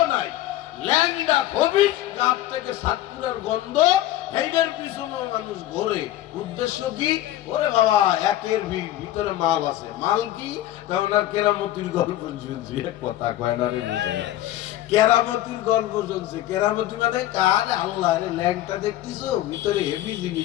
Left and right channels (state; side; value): quieter; right; 14.2 dB